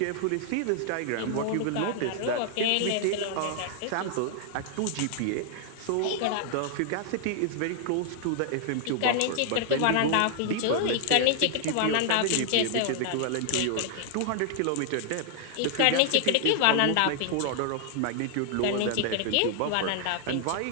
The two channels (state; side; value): different; both; correlation 0.00